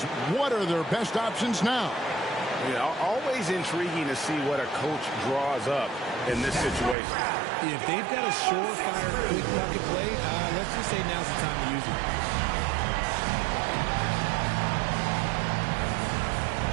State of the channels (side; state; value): left; drops out; at 7.0 s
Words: what are their best options now? Always intriguing to see what a coach draws up in this situation. If they've got a surefire quick bucket play, let's just say now's the time to use it.